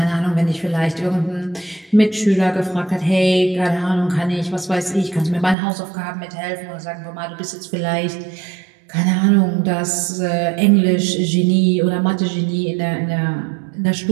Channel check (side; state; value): left; drops out; at 5.6 s